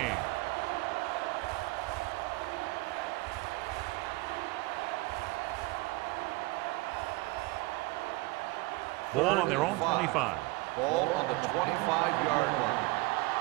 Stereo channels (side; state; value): left; quieter; 22.6 dB